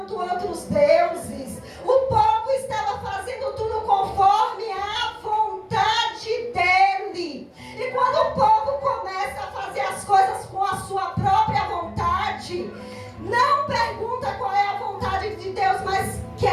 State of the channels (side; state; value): both; identical; correlation 1.00